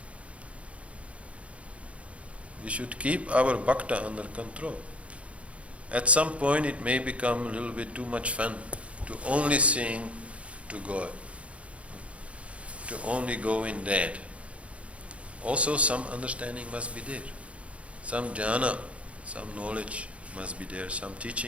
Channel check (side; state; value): left; late; 0.063 ms